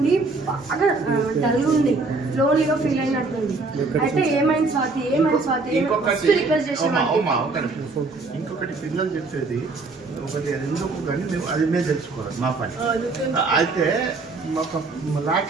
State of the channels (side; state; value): left; quieter; 3.7 dB